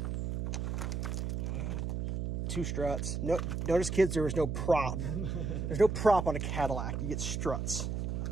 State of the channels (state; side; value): noise; right; hum, 2 dB below the sound